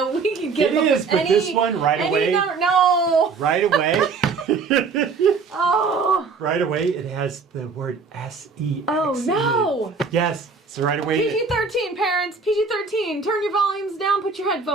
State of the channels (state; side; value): quieter; left; 4.9 dB